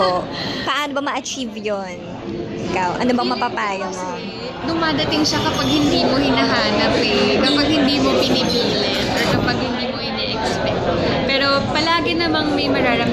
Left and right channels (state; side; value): identical; both; correlation 1.00